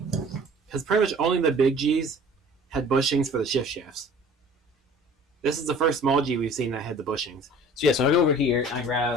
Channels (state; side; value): normal; both; correlation 0.47